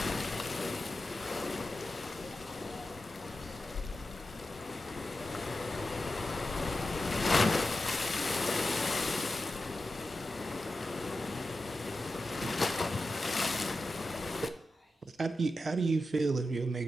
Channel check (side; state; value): both; normal; correlation 0.91